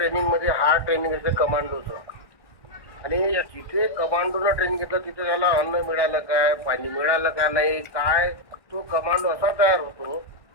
hard training आहे कमांडोचं. आणि येस. जिथे कमांडोनं ट्रेनिंग घेतलं तिथे त्याला अन्न मिळालं काय, पाणी मिळालं का नाही, काय तो कमांडो असा तयार होतो,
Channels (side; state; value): right; late; 1.6 ms